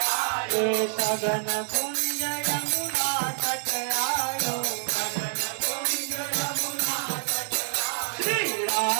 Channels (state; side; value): silent; left; 60 dB below the other